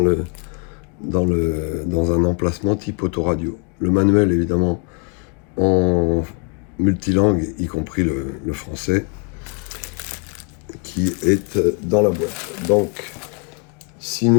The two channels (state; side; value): quieter; right; 37.2 dB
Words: un emplacement type autoradio. Le manuel, évidemment, en multilangue, y compris le français, qui est dans la boîte. Donc, si